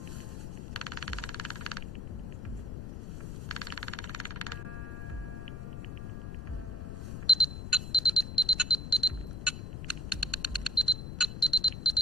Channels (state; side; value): noise; left; rumble, 7 dB below the sound